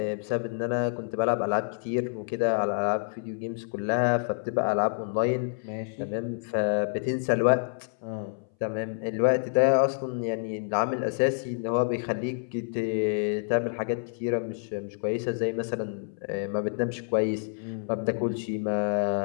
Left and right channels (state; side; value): silent; right; 59 dB below the other